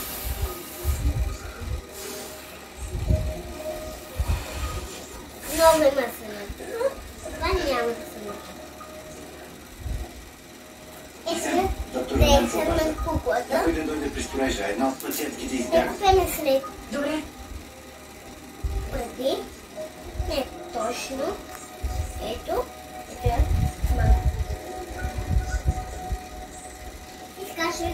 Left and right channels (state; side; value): identical; both; correlation 1.00